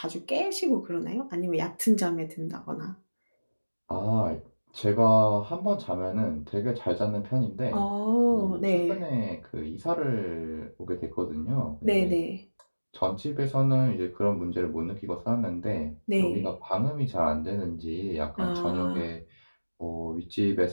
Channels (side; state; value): both; inverted; correlation -1.00